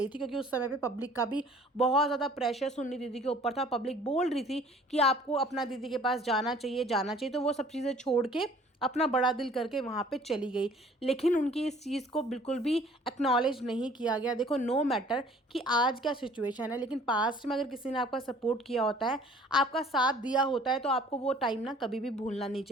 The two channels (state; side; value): normal; both; correlation 0.53